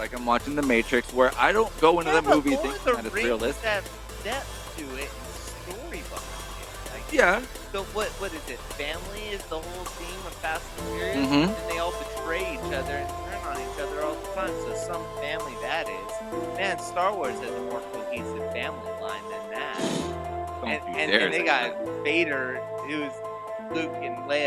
I'm watching The Matrix, where I don't go into the movie Lord thinking of the that it's Rings realistic. have depth to it and story behind it. Like, Yeah, so what is it? Family is the whole theme of Fast and Furious, Mhm. and they all betray each other and turn on each other all the time. So some family that is. Man, Star Wars has a more cohesive family line than that. don't you And dare they say got that. Vader, who's Luke and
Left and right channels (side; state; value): both; identical; correlation 1.00